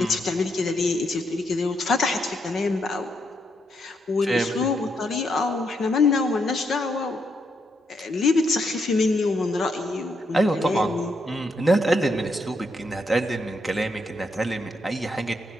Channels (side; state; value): both; normal; correlation 0.78